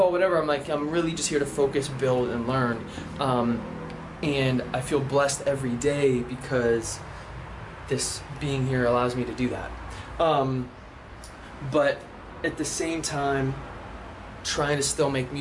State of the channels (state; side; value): identical; both; correlation 1.00